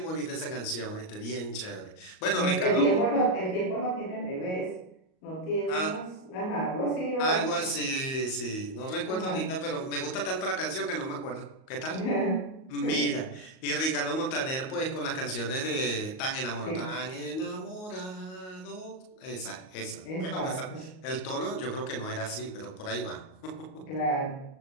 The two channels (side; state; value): right; late; 38 ms